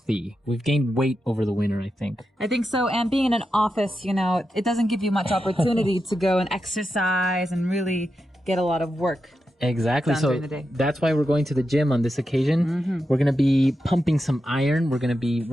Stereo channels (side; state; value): both; normal; correlation 0.88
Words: We've gained weight over the winter, I think. I think so. And being in an office, it doesn't give you much opportunity to go and exercise and really get a lot of work. Exactly. So that's why we're going to the gym on this occasion. Mm-hmm. We're going to be pumping some iron. We're going to be